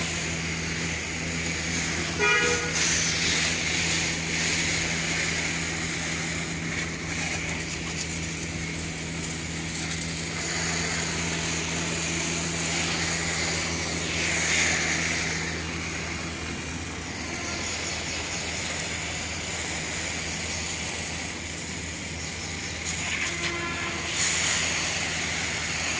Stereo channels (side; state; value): both; identical; correlation 1.00